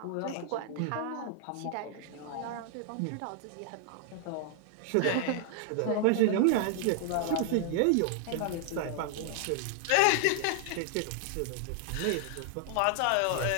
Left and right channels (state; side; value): different; both; correlation -0.01